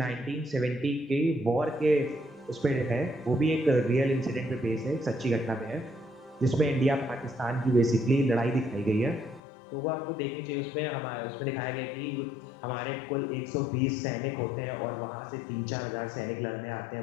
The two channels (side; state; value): right; drops out; at 9.4 s